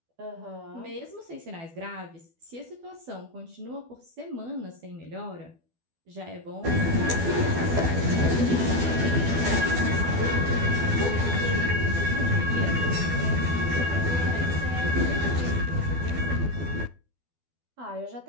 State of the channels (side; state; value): left; late; 12 ms